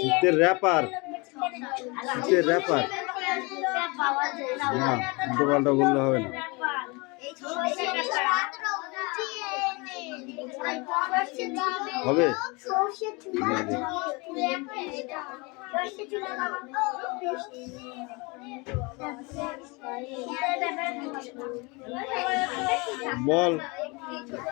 র্যাপার, শীতের র্যাপার না, উল্টো পাল্টা বললে হবে না। হবে বল,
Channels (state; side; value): quieter; right; 27.7 dB